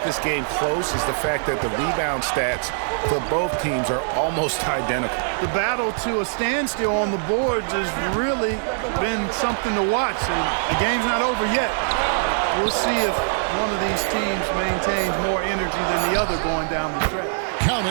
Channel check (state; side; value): silent; left; 64 dB below the other